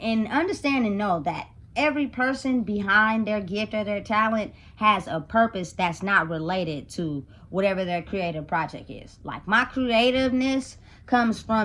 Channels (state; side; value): identical; both; correlation 1.00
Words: understand and know that every person behind their gift or their talent has a purpose that's not related to whatever their creative project is. Like my creativeness comes